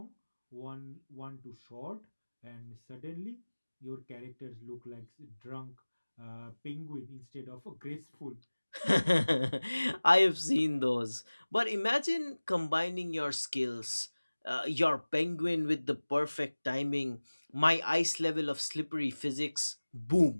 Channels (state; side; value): inverted; both; correlation -1.00